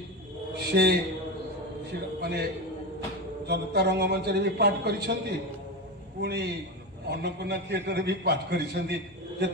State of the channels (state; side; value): normal; both; correlation 0.19